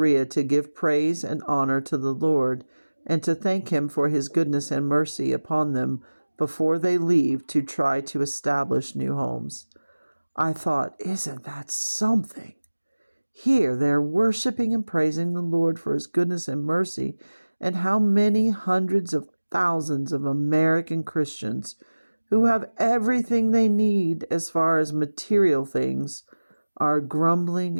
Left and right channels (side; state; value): both; inverted; correlation -1.00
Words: to give praise and honor to the Lord and to thank him for his goodness and mercy upon them before they leave to try to establish new homes. I thought, isn't that something? Here they're worshiping and praising the Lord for his goodness and mercy, and how many hundreds of thousands of American Christians who have everything they need as far as material things are grumbling